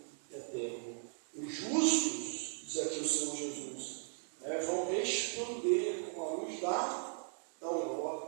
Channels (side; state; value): left; silent; 53 dB below the other